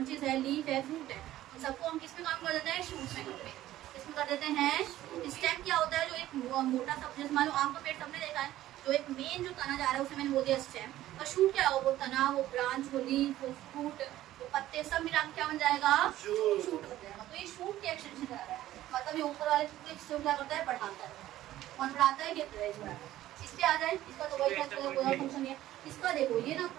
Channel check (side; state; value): left; quieter; 14.3 dB